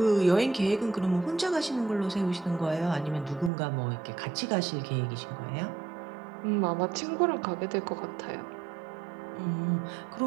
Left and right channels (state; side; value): drops out; left; at 3.5 s